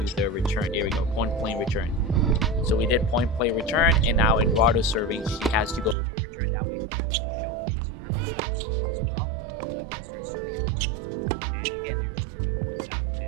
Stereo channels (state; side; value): drops out; left; at 6.0 s